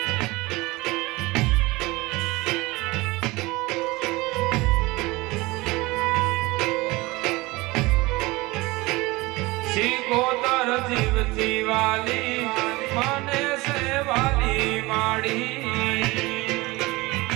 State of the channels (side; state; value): left; quieter; 21.9 dB